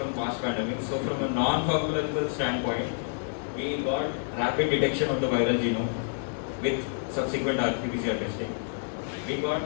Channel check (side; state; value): right; silent; 58 dB below the other